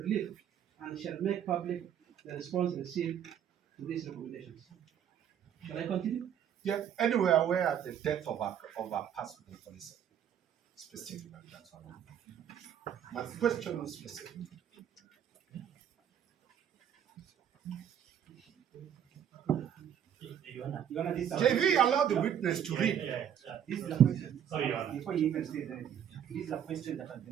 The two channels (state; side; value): quieter; left; 9.3 dB